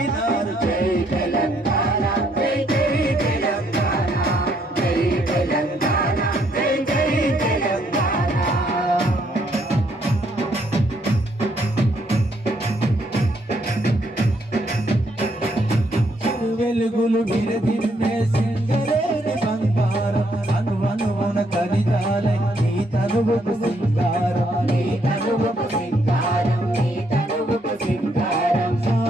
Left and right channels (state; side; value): normal; both; correlation 0.71